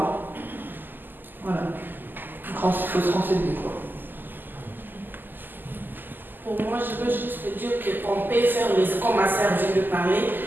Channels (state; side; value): late; left; 0.090 ms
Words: Voilà. Donc il faut se renseigner, quoi. Pour moi, je veux juste dire qu'on peut faire, comme ma sœur vient de parler,